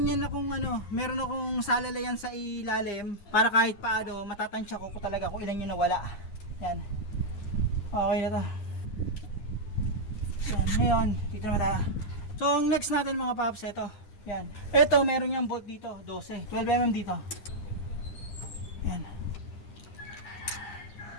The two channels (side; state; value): right; late; 9.9 ms